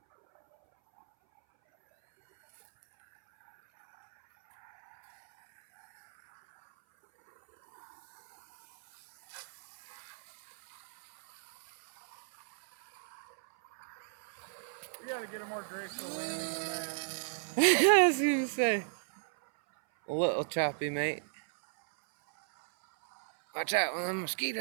We gotta get a more graceful landing than that. I was gonna say. A little choppy, mate. Watch out, one of them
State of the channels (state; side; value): silent; left; 54 dB below the other